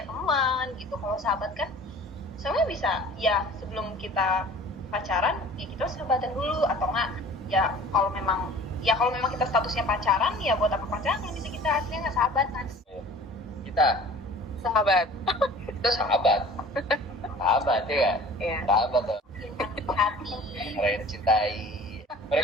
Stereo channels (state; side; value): normal; both; correlation 0.46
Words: teman gitu. Kalau sahabat kan sebenarnya bisa ya sebelum kita pacaran ya kita sahabatan dulu atau enggak ya kalau memang kita statusnya pacaran ya buat apa pacaran kalau bisa kita aslinya nggak sahabatan. Kita sahabat ya. Sahabat dong. Hati. Orang yang dicintai.